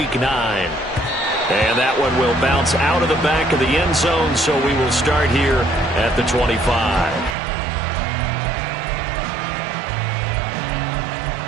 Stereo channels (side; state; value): left; drops out; at 7.4 s